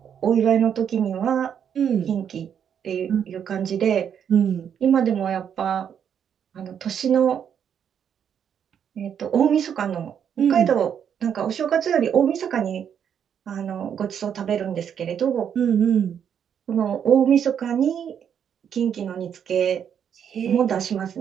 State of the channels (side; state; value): left; quieter; 8.3 dB